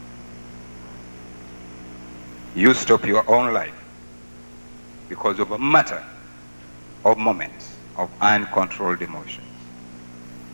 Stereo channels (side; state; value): both; inverted; correlation -1.00